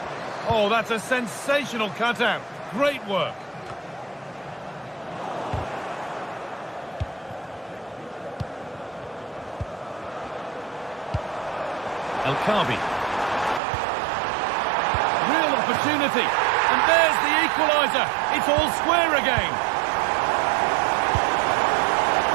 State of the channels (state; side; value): drops out; left; at 13.6 s